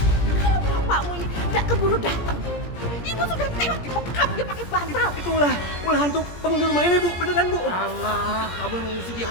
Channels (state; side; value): late; right; 17 ms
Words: Kalau bapakmu ini tidak keburu datang, ibu sudah tewas dibekap dia pakai bantal. Itu ulah hantu penghuni rumah ini, Bu. Beneran, Bu. Allah, kamu yang mesti